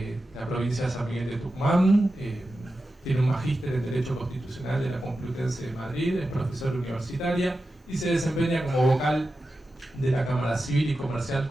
la provincia de San Miguel de Tucumán, tiene un magíster en Derecho Constitucional de la Complutense de Madrid, es profesora universitaria y se desempeña como vocal de la Cámara Civil y Comercial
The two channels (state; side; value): normal; both; correlation 0.91